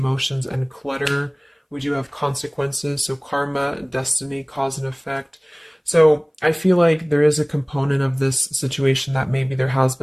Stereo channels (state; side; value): identical; both; correlation 1.00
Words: and clutter. We do have consequences. So karma, destiny, cause and effect. So I feel like there is a component of this situation that maybe there has